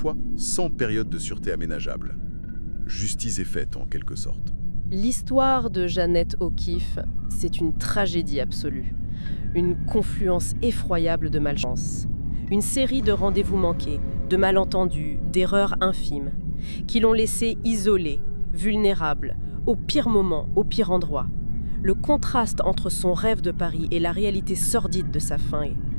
sans période de sûreté aménageable. Justice est faite, en quelque sorte. L'histoire de Jeannette O'Keeffe, c'est une tragédie absolue. Une confluence effroyable de malchance. Une série de rendez-vous manqués, de malentendus, d'erreurs infimes, qui l'ont laissée isolée, vulnérable, au pire moment, au pire endroit. Le contraste entre son rêve de Paris et la réalité sordide de sa fin est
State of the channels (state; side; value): inverted; both; correlation -1.00